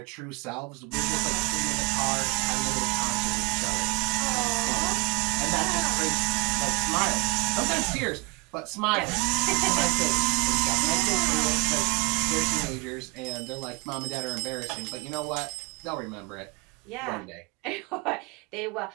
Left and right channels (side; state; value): left; quieter; 26.9 dB